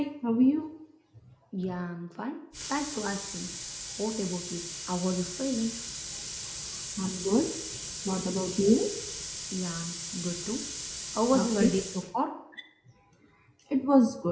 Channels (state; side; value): identical; both; correlation 1.00